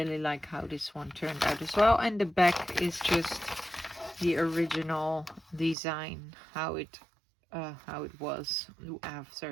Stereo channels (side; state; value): left; drops out; at 5.8 s